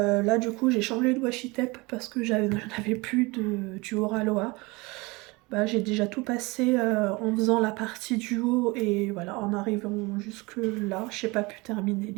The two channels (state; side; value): quieter; left; 24.8 dB